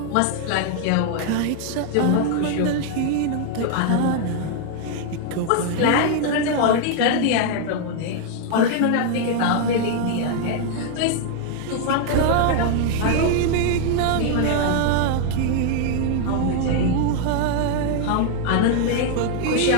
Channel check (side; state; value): both; different; correlation 0.00